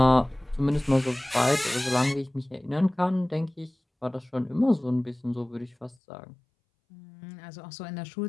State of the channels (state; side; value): drops out; right; at 6.0 s